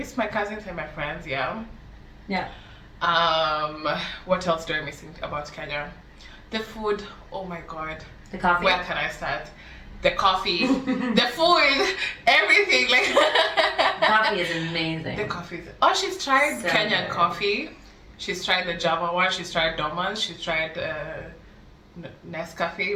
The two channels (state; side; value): identical; both; correlation 1.00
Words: my cousins and my friends, yeah. Yeah. What else do I miss about Kenya? The food, oh my god. The coffee. Where can I start? The coffee, the food, everything. Like Coffee is amazing. the coffee. Oh, she's tried So Kenyan good. coffee. She's tried the Java one. She's tried Dormans. She's tried